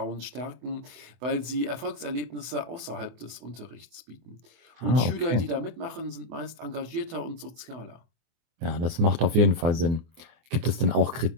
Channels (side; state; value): left; late; 24 ms